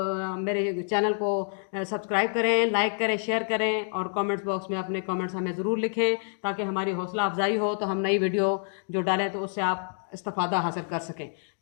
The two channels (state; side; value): silent; right; 60 dB below the other